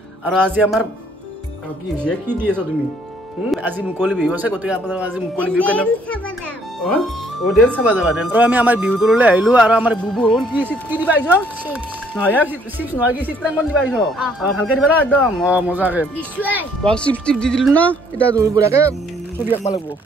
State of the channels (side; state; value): both; normal; correlation 0.64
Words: আৰু আজি আমাৰ কি হৈছে কি দি আছা তুমি আজি মুকলি বিহু আছে গতিকে আপোনালোক আজি মুকলি বিহু কেনে অ ডেন্স চাবা যাবা ডেন্স আৰু আমি আমাৰ বিহু তললৈ আহিলোঁ আৰু আমাৰ বুবু কি দিবা আহিছ নহয় চিপছ নহয় কি চিত্ৰাংকন দিবা আহিছ ভালকে দিবা না একদম মজাকে চিপছ টিপ দি দিলোঁ না এতিয়া বঢ়িয়াকে ছবি আঁকিব লাগিব